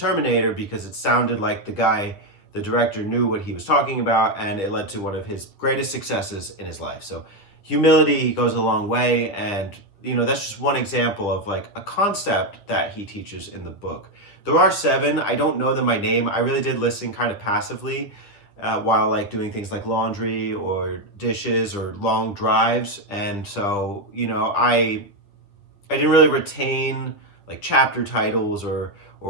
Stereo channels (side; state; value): right; late; 10 ms